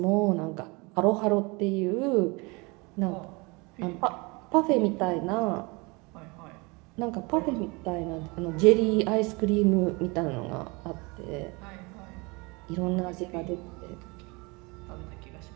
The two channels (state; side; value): quieter; left; 27.2 dB